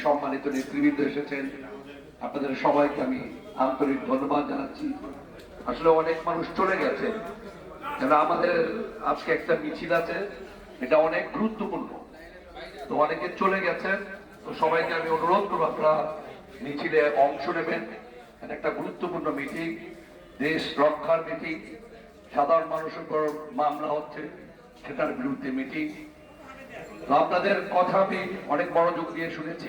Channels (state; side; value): identical; both; correlation 1.00